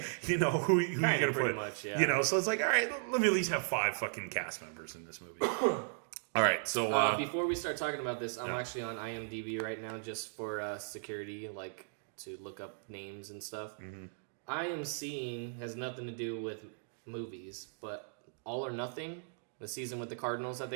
You know, who you going to put? Much, yeah. You know, so it's like, all right, let me at least have 5 fucking cast members in this movie. All right, so... before we start talking about this, I'm actually on IMDb right now just for security, like to look up names and stuff. Mm-hmm. I am seeing, has nothing to do with movies, but All or Nothing, the season with the Cardinals that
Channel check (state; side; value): silent; left; digital silence